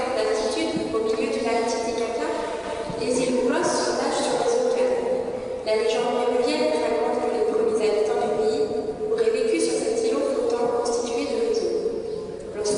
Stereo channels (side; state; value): both; identical; correlation 1.00